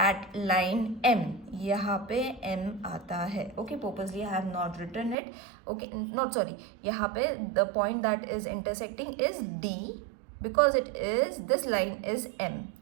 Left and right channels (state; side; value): drops out; left; at 5.2 s